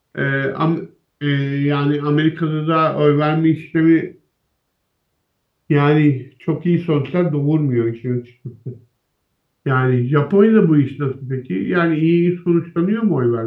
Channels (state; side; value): identical; both; correlation 1.00